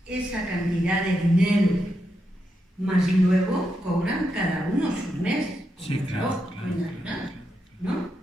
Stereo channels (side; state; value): both; normal; correlation 0.84